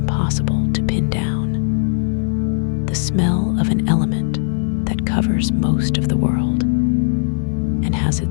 to pin down. The smell of an element that covers most of the world and has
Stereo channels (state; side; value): silent; right; digital silence